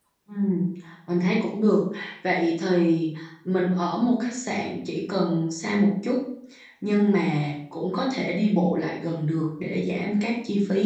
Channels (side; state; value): both; identical; correlation 1.00